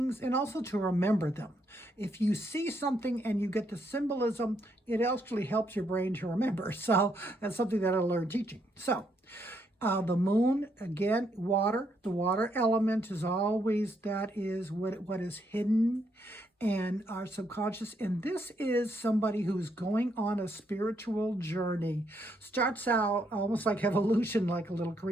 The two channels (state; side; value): normal; both; correlation 0.75